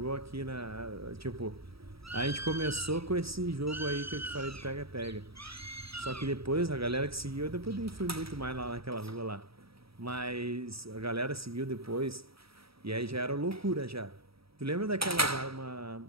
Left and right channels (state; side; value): late; left; 0.76 ms